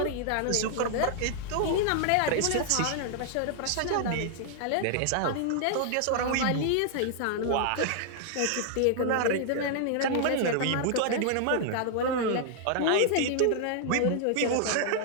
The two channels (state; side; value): different; both; correlation -0.01